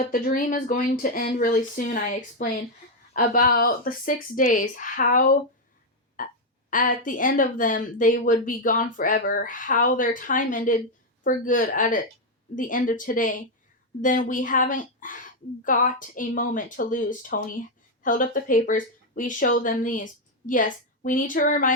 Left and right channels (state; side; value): normal; both; correlation 0.02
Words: the dream is going to end really soon, I explained. About the 6 days, how at the end of them they would be gone forever, how their time ended for good the end of today. Then we haven't got a moment to lose. Tony held up the papers. We show them these. Yes, we need to